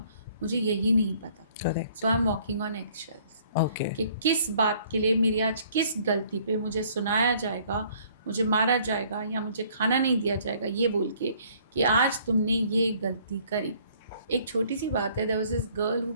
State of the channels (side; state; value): both; inverted; correlation -0.59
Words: मुझे यही नहीं पता. Correct. So I am walking on eggshells. Okay. कि किस बात के लिए मेरी आज किस गलती पे मुझे सुनाया जाएगा, मुझे मारा जाएगा, या मुझे खाना नहीं दिया जाएगा, ये बोल के कि आज तुमने ये गलती करी. एक छोटी सी बात है. There was this girl who